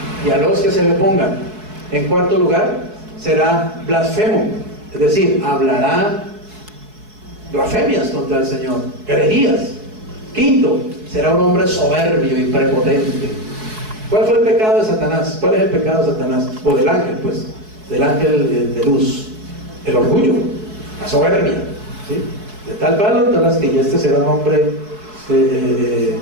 y a los que se le pongan. En cuarto lugar, será blasfemo, es decir, hablará blasfemias contra el Señor, herejías. Quinto, será un hombre soberbio y prepotente. ¿Cuál fue el pecado de Satanás? ¿Cuál es el pecado de Satanás? O del ángel, pues, del ángel de luz. El orgullo, la soberbia, ¿sí? De tal palo, tal astilla. Este será un hombre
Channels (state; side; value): late; left; 4.7 ms